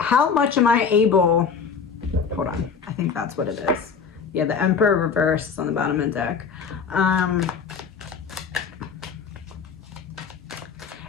am I able, hold on, I think that's what it is. Yeah, the Emperor reverse is on the bottom of the deck.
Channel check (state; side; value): quieter; right; 6.0 dB